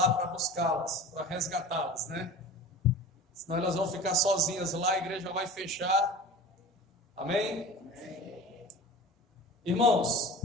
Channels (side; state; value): both; normal; correlation 0.38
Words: para buscá-las, para resgatá-las, né? Senão elas vão ficar sozinhas lá, a igreja vai fechar. Amém? Irmãos,